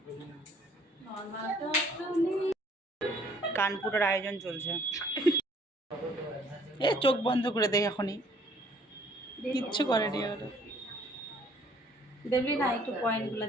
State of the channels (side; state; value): both; normal; correlation 0.59